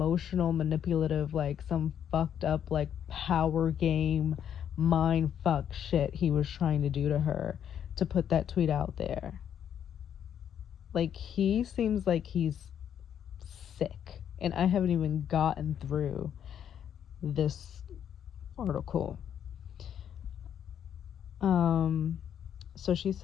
manipulative, like some fucked up, like power game, mind fuck shit he was trying to do to her to put that tweet out there. Like, he seems like he's sick, and I haven't even gotten through this article. So she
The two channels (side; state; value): right; quieter; 9.2 dB